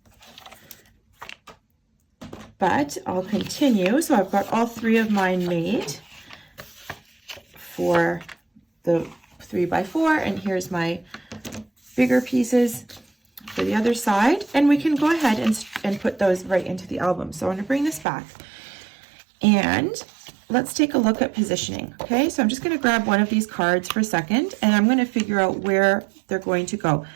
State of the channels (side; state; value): left; drops out; at 18.1 s